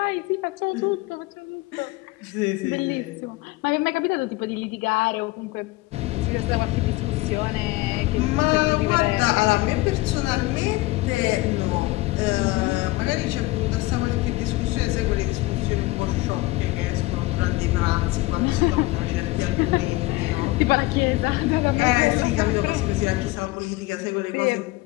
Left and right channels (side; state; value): right; quieter; 20.3 dB